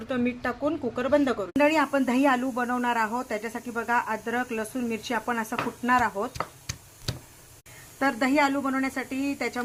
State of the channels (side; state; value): both; identical; correlation 1.00